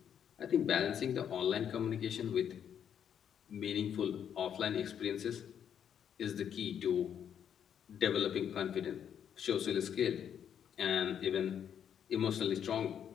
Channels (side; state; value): right; quieter; 8.7 dB